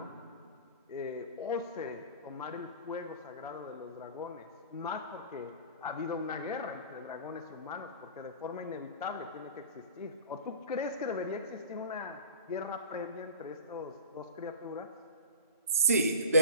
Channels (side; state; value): both; inverted; correlation -0.38